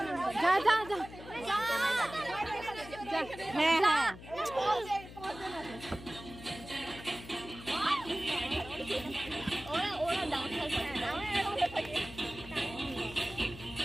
যা যা যা। হ্যাঁ হ্যাঁ ওরা ডান্সার করে না।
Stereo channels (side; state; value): left; noise; hum, 15 dB below the sound